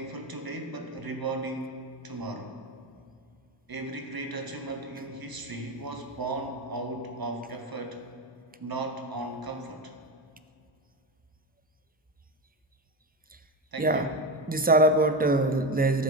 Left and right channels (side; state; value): both; normal; correlation 0.18